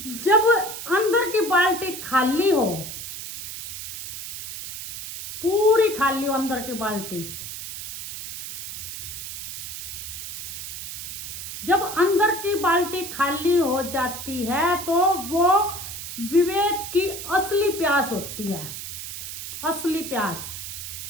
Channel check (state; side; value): noise; right; hiss, 8 dB below the sound